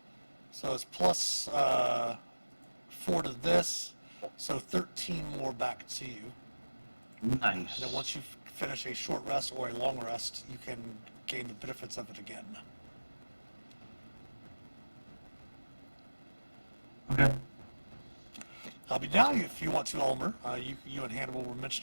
So it's plus 4 to this, so 13 more back to you. Nice. And then once you finish a short rest or a long rest, you can gain the benefits of it again. Okay. But now, if you want to, Ulmer, you and Hannibal were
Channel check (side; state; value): both; inverted; correlation -1.00